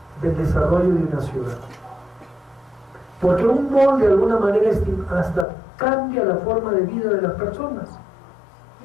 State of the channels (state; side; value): drops out; right; at 5.5 s